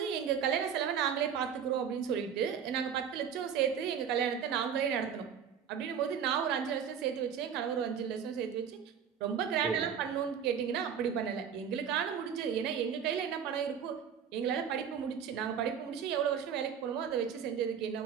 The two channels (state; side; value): quieter; left; 7.8 dB